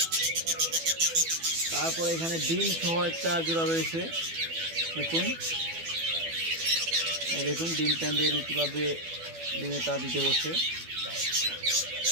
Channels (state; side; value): late; left; 12 ms